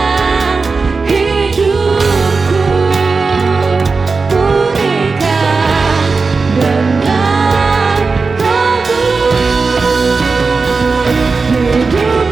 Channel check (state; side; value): quieter; left; 4.3 dB